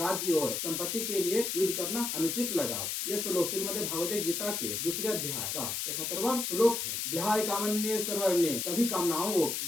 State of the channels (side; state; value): left; noise; hiss, 2 dB below the sound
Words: और संपत्ति के लिए युद्ध करना अनुचित लगा। यह श्लोक श्रीमद् भगवद गीता के दूसरे अध्याय का 71वां श्लोक है। विहाय कामन्ये सर्वर्णे, कभी कामनाओं